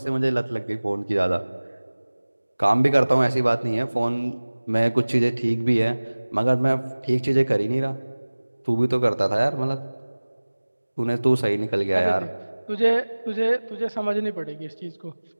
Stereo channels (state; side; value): inverted; both; correlation -1.00